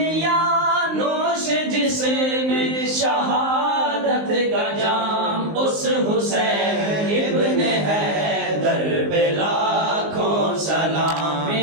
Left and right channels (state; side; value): late; left; 19 ms